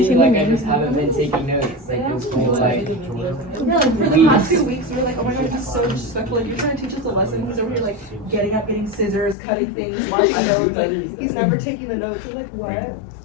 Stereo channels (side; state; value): right; drops out; at 9.3 s